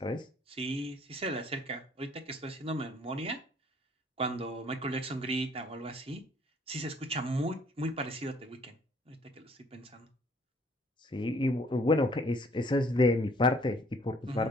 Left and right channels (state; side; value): normal; both; correlation 0.60